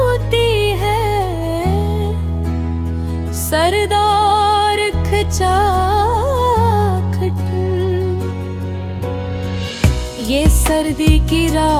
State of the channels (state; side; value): identical; both; correlation 1.00